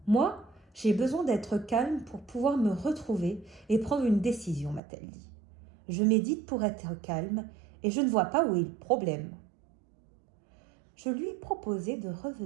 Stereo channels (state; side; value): drops out; left; at 4.8 s